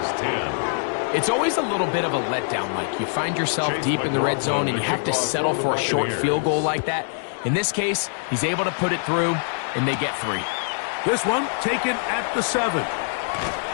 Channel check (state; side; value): silent; right; digital silence